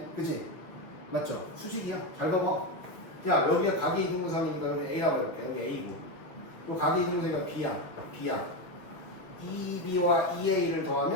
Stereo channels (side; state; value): right; late; 6.4 ms